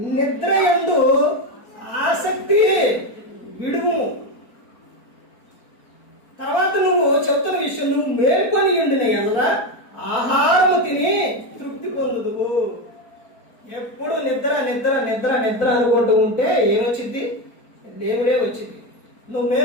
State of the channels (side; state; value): right; late; 4.4 ms